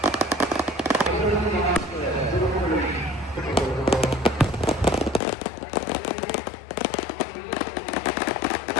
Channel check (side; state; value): right; drops out; at 5.2 s